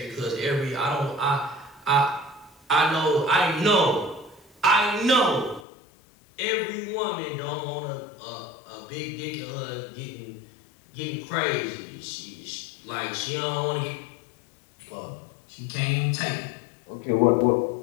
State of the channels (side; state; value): right; drops out; at 5.7 s